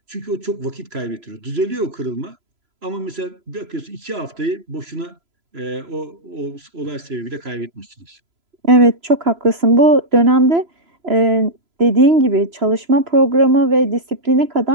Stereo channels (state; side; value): late; left; 3.0 ms